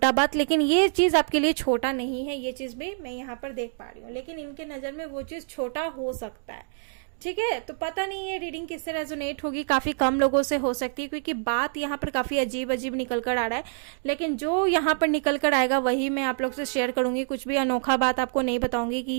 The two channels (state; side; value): silent; left; digital silence